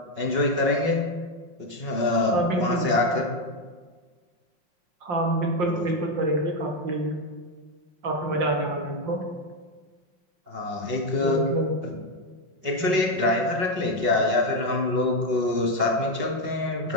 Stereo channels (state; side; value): late; left; 5.3 ms